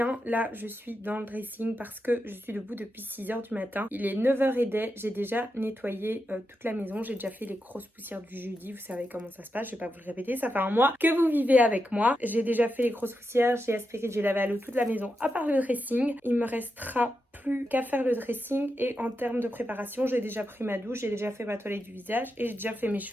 Là, je suis dans le dressing parce que je suis debout depuis 6h du matin. Il est 9h. J'ai déjà nettoyé toute la maison. J'ai déjà fait les grosses poussières du jeudi. Vous savez comment ça se passe. Je vais pas vous le répéter. Ça fait un mois que vous vivez avec moi. J'ai déjà fait les grosses poussières. J'ai aspiré, j'ai lavé à l'eau toute la maison à part le dressing. Il me restera plus qu'à faire le dressing. Et en termes de préparation, j'ai déjà pris ma douche. J'ai déjà fait ma toilette du visage. Et j'ai déjà fait mes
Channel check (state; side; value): normal; both; correlation 0.87